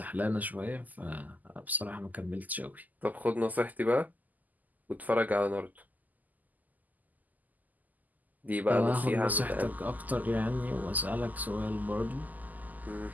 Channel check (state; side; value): late; left; 0.081 ms